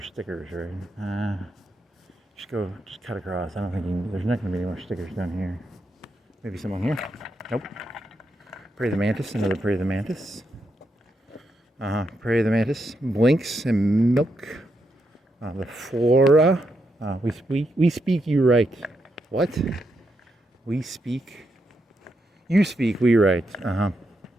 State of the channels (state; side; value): normal; both; correlation 0.82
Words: stickers, right? Just cut across. I don't think there's not gonna be any more stickers down here. Maybe some on here? Nope. Prey the Mantis, another Prey the Mantis. Prey the Mantis, Blinks and Milk. The Flora. We speak, you write. What? We speak. You speak, we write.